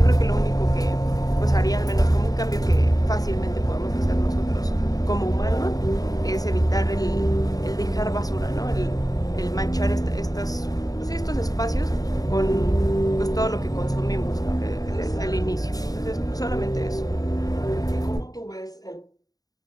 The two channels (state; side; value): late; right; 0.18 ms